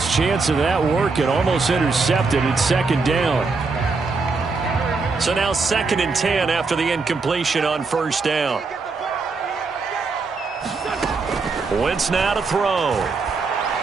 chance of that working. Almost intercepted. It's 2nd down. So now 2nd and 10 after the incompletion on 1st down. Wentz now to throw.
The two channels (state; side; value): quieter; left; 4.2 dB